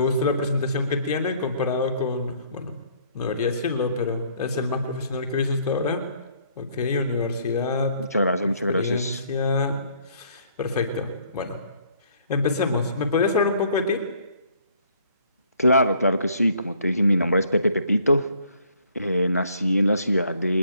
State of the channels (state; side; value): inverted; both; correlation -0.62